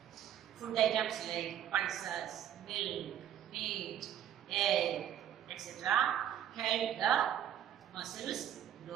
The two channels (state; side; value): quieter; left; 10.4 dB